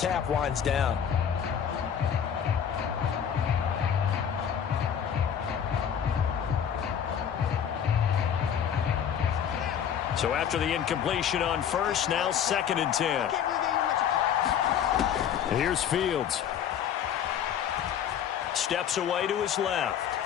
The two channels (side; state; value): right; quieter; 8.6 dB